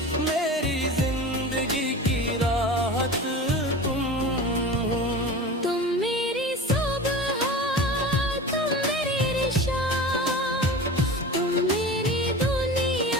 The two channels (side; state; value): both; normal; correlation 0.33